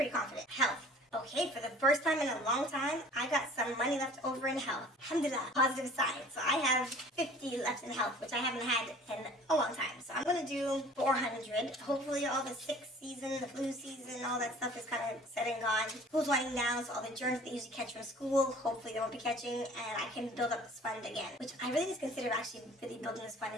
confident. Health. Okay, for the first time in a long time, I got some money left over in health. Alhamdulillah, positive sign. So I have 50 left in health, which I haven't had in a long time. So I'm going to do 400. Hopefully all the sick season, the flu season, all that stuff is kind of said and gone. School's winding down, so all the germs they usually catch from school, hopefully they won't be catching, and I can build up this fund again, which I really just consider actually really building this fund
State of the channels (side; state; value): both; normal; correlation 0.48